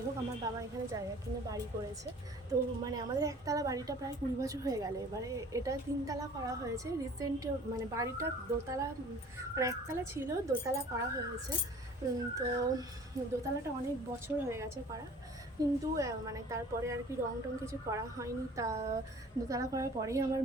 হোক, আমার বাবা এখানে জায়গা কিনে বাড়ি করেছে। তো মানে আমাদের একতলা বাড়িটা প্রায় 20 বছর হয়ে গেল, এবারে এটা 3 তলা করা হয়েছে রিসেন্ট। মানে বাড়িটা দোতলা, মানে একতলা ছিল, দোতলা করা হয়েছে। তো দোতলাটা অনেক বছর হয়ে গেছে করা, কিন্তু মানে তারপরে আর কি রং টং কিছু করা হয়নি। তা দোতলা করার পরেই আমার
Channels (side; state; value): both; normal; correlation 0.48